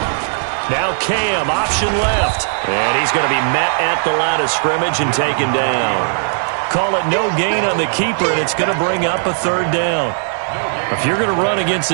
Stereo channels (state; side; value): silent; left; digital silence